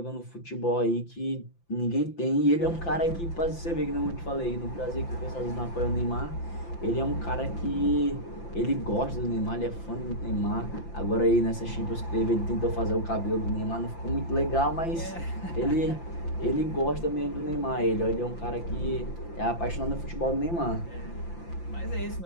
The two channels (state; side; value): late; right; 5.9 ms